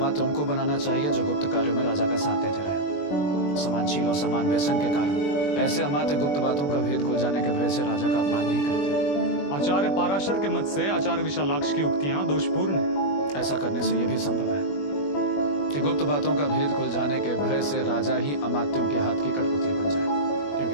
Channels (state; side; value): late; right; 21 ms